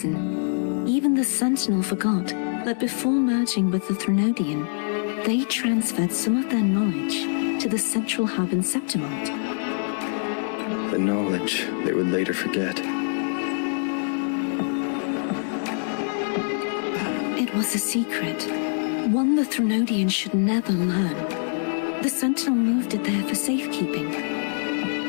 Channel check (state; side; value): silent; right; digital silence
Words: even the Sentinel forgot that before merging with the Threnodian, they transferred some of their knowledge to the central hub in Septimont. The knowledge they would later forget. It was a secret, one the Threnodian should never learn. The Sentinel moved it there for safekeeping.